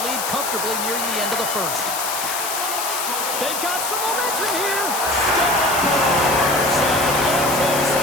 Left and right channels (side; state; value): left; noise; hiss, 3 dB below the sound